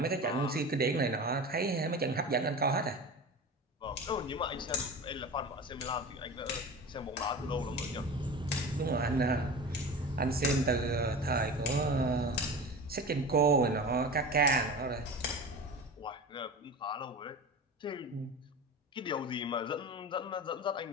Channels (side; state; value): both; normal; correlation 0.31